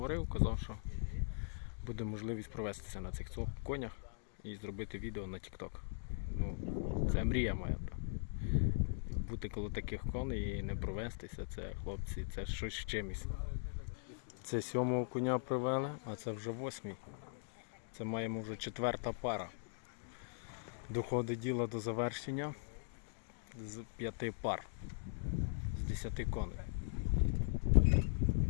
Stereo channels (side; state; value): right; silent; digital silence